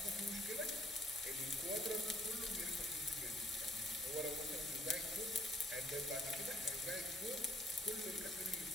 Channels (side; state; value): both; normal; correlation 0.60